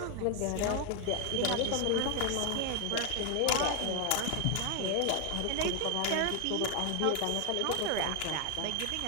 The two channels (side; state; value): both; different; correlation 0.01